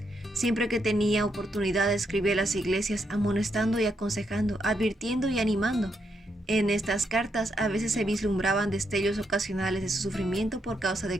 Siempre que tenía oportunidad escribía a las iglesias amonestando y aconsejando, advirtiendo y animando. En estas cartas a veces se vislumbraban destellos ocasionales de su sufrimiento por causa de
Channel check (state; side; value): normal; both; correlation 0.79